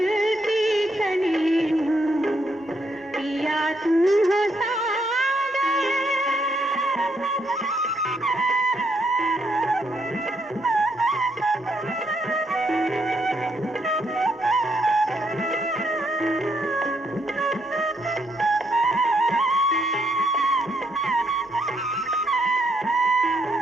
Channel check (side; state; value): both; normal; correlation 0.75